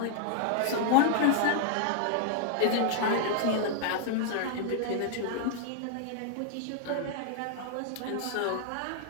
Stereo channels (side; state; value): both; different; correlation 0.00